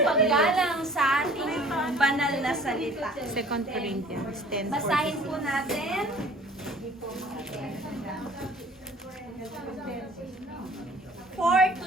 paggalang sa ating banal na salita. 2 Corinthians 10. Basahin po natin. Four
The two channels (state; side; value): normal; both; correlation 0.50